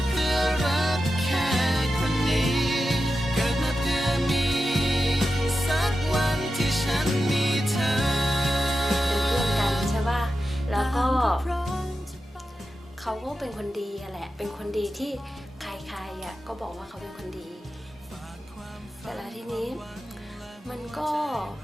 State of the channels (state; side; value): normal; both; correlation 0.91